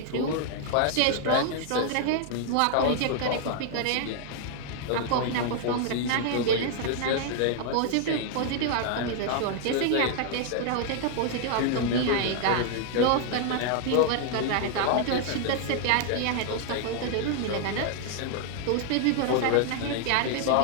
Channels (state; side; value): different; both; correlation 0.00